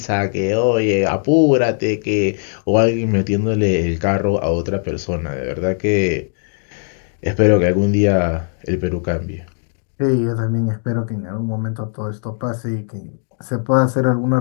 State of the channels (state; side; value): silent; right; 60 dB below the other